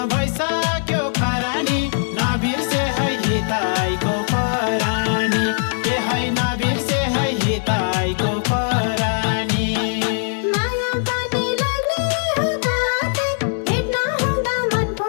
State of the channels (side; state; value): right; silent; digital silence